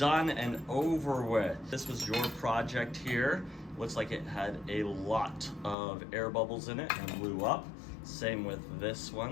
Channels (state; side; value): drops out; right; at 5.8 s